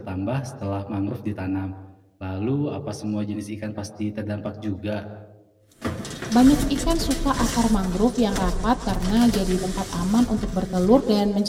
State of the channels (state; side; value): identical; both; correlation 1.00